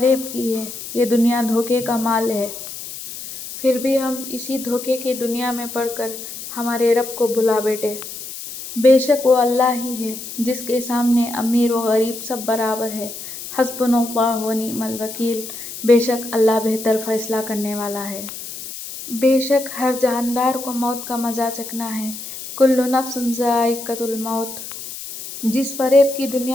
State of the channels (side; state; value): left; noise; hiss, 10 dB below the sound